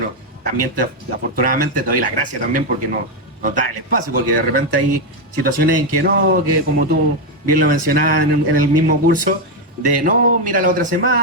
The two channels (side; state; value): both; normal; correlation 0.05